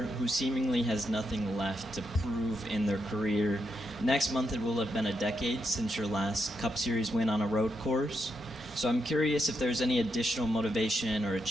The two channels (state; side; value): normal; both; correlation 0.82